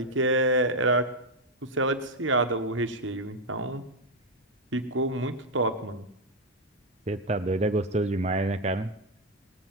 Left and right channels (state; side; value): normal; both; correlation 0.03